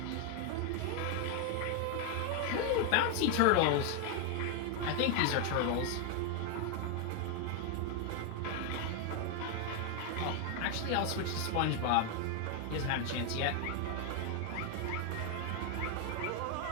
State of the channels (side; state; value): both; different; correlation 0.01